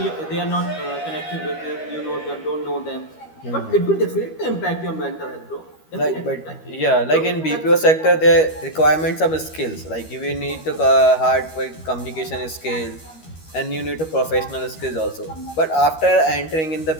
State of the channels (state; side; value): late; right; 13 ms